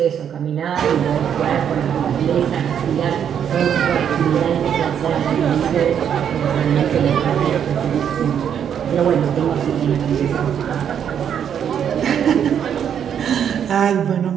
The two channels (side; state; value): left; quieter; 8.6 dB